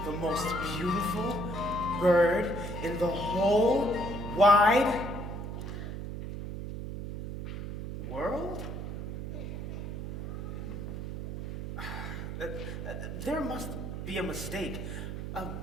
the most beautiful bird in the whole wide world? There must be a mistake.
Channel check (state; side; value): noise; right; hum, 6 dB below the sound